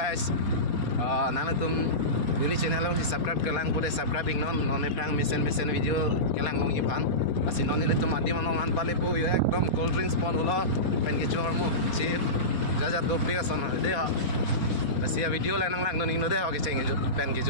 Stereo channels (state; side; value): late; right; 4.2 ms